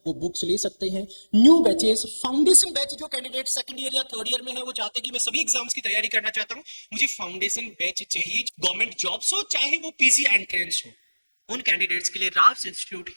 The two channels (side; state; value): both; inverted; correlation -1.00